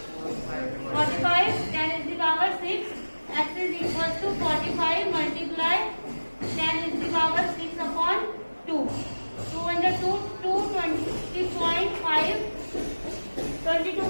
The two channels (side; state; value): both; inverted; correlation -1.00